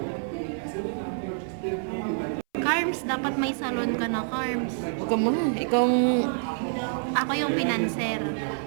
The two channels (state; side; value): silent; left; 60 dB below the other